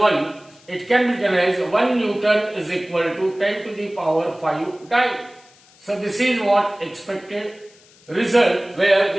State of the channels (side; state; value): left; noise; hiss, 28 dB below the sound